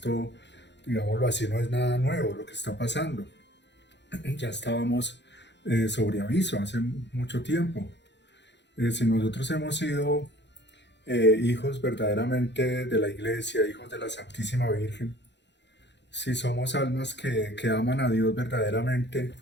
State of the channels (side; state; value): right; late; 0.51 ms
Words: digámoslo así, no es nada nuevo lo que está pasando. Ya estábamos sobre aviso hace mucho tiempo. Si nosotros hemos sido hijos verdaderamente de la Iglesia, hijos de la Santísima Virgen, si somos almas que aman a Dios verdaderamente,